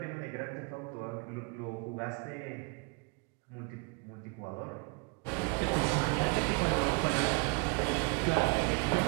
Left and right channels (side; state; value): left; quieter; 31.0 dB